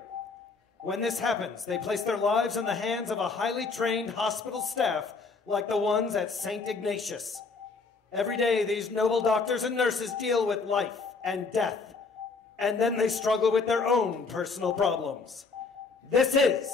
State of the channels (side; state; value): right; quieter; 4.5 dB